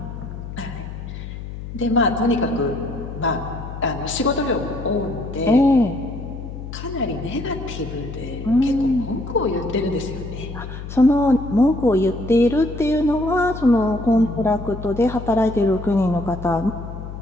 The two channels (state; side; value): noise; left; hum, 10 dB below the sound